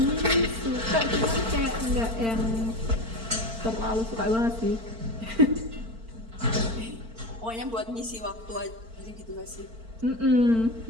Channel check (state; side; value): late; left; 4.4 ms